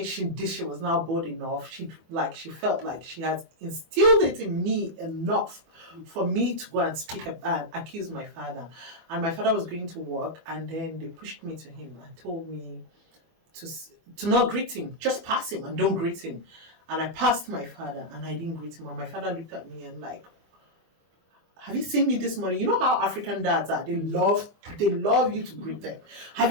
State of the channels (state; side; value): late; left; 24 ms